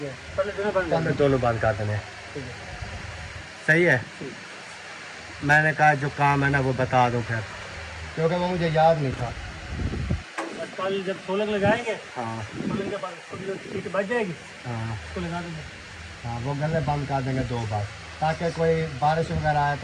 है, पहले दोनों बंद कर हमने दोनों बंद कर देने हैं। ठीक है, सही है। ठीक। मैंने कहा जो काम है ना वो बता दूँ फिर, क्योंकि वो मुझे याद नहीं था। बस कल जब सोलर लगाएंगे, हाँ सोलर के बाद उसको जो सीट बच जाएगी हाँ उसको लगा देंगे। हाँ, वो गले बंद कर देंगे 2 बार, ताकि कोई बारिश वगैरह आए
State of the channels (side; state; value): both; identical; correlation 1.00